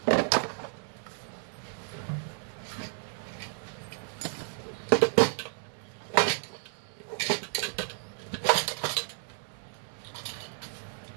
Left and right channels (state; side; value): silent; left; 56 dB below the other